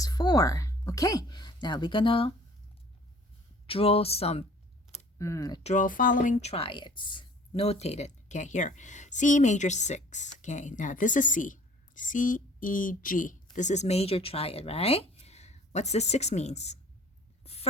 Okay, now we're gonna draw following triads. Notated. Okay, here. C major 6. Okay, now this is C. C, E, G. This is major triad, right? What's the 6 means?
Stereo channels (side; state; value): both; normal; correlation 0.51